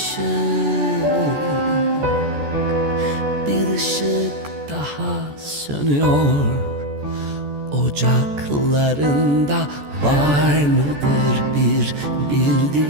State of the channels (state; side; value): late; left; 14 ms